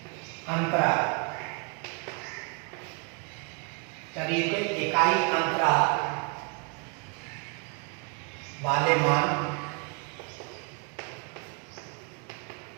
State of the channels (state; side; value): quieter; left; 34.5 dB